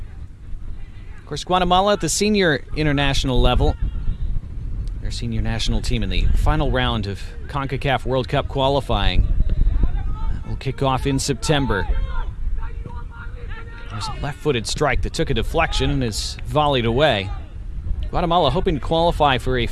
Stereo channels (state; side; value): identical; both; correlation 1.00